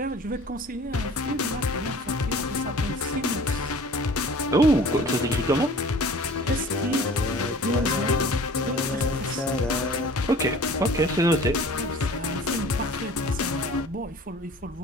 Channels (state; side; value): normal; both; correlation 0.46